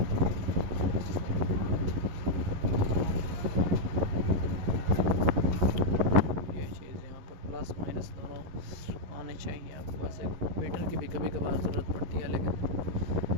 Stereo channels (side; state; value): left; late; 11 ms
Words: ये चीज़ यहाँ पर प्लस माइनस दोनों आने चाहिए। आपके पास एक मीटर की भी कभी कभार ज़रूरत पड़ती है, लेकिन